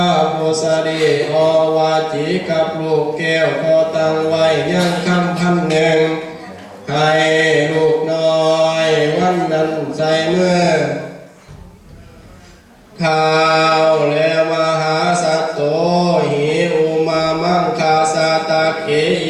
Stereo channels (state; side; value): identical; both; correlation 1.00